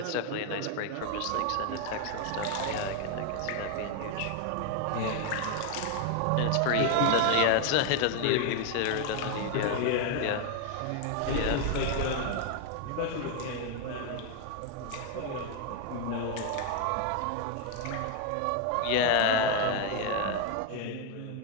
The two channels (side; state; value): both; different; correlation 0.01